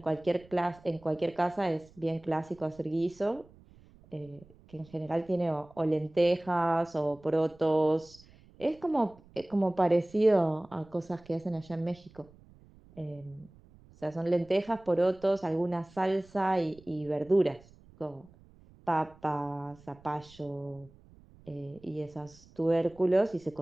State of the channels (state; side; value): noise; right; rumble, 25 dB below the sound